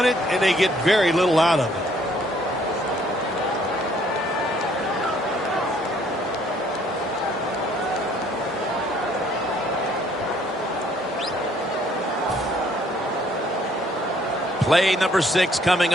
it, and they get very little out of it. Play number 6 coming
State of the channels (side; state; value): both; normal; correlation 0.63